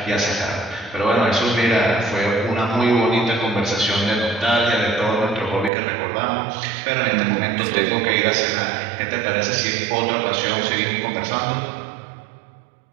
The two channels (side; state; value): left; drops out; at 5.7 s